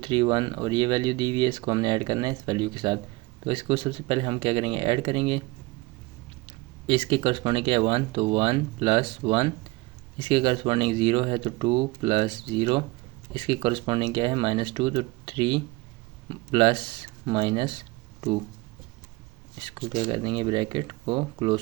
1 और ये वैल्यू दी हुई है, इसको हमने ऐड करना है इस वैल्यू के साथ। तो इसको सबसे पहले हम क्या करेंगे, ऐड करेंगे। इसके करस्पॉन्डिंग क्या है 1, तो 1 + 1, इसके करस्पॉन्डिंग 0 है तो 2 + 0, इसके करस्पॉन्डिंग क्या है -2, तो 3 + -2, इसको क्या कर देंगे ब्रैकेट को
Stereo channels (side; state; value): left; quieter; 22.3 dB